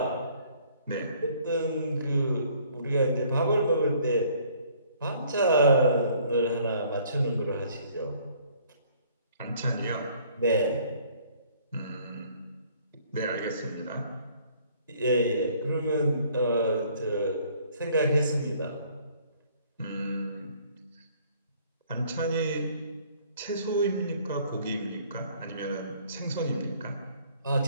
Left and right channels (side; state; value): both; inverted; correlation -0.59